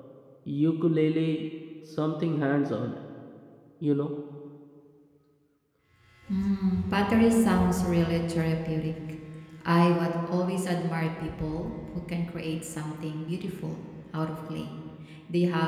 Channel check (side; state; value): both; identical; correlation 1.00